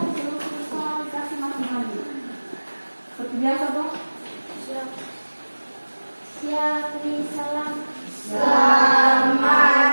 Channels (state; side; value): inverted; both; correlation -1.00